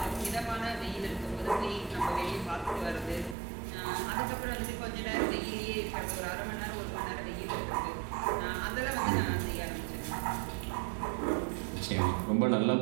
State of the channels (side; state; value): left; drops out; at 3.4 s